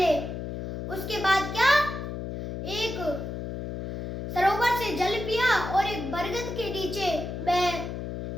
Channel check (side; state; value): left; noise; hum, 6 dB below the sound